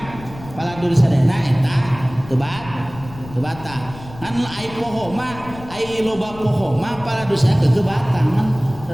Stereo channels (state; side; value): noise; left; rumble, 16 dB below the sound